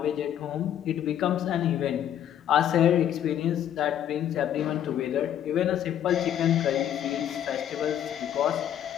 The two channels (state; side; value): quieter; right; 10.5 dB